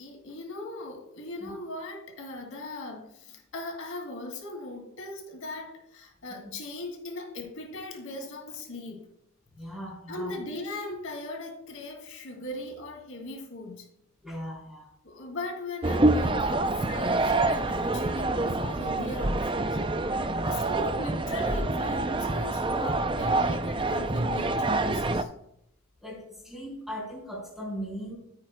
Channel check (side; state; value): both; normal; correlation 0.39